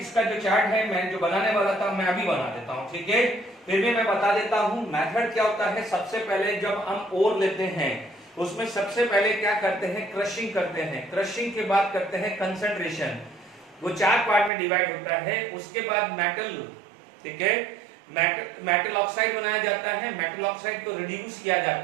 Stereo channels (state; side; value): drops out; left; at 14.5 s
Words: जो चार्ट है मैं जो बनाने वाला था मैं अभी बना देता हूं, ठीक है। फिर भी मैं बता देता हूं मेथड क्या होता है। सबसे पहले जब हम ओर लेते हैं उसमें सबसे पहले क्या करते हैं, क्रशिंग करते हैं, क्रशिंग के बाद करते हैं कंसंट्रेशन, वो 4 पार्ट में डिवाइड होता है। उसके बाद मेटल, ठीक है, मेटल ऑक्साइड बनाया जाता है, मेटल ऑक्साइड को रिड्यूस किया